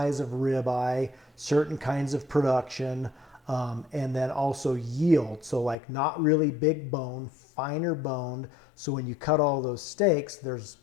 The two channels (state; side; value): drops out; right; at 5.8 s